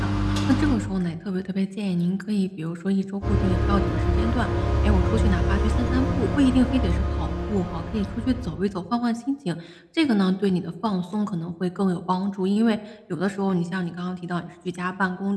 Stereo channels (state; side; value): identical; both; correlation 1.00